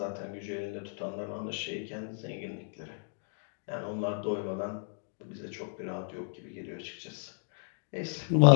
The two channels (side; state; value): right; silent; 56 dB below the other